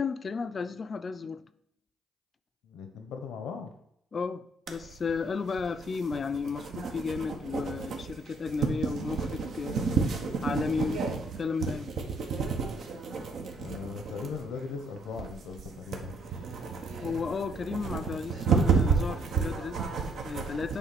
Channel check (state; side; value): normal; both; correlation 0.66